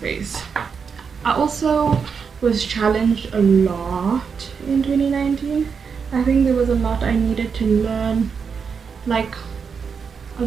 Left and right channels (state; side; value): quieter; left; 6.0 dB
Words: I also was challenged a lot in 2019. I think there was a lot I needed to learn, like a